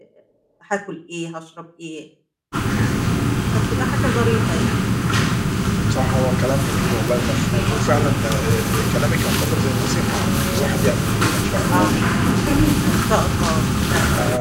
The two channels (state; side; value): identical; both; correlation 1.00